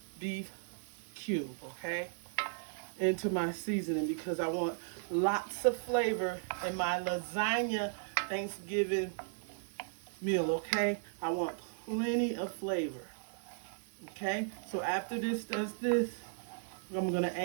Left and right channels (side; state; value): left; silent; 54 dB below the other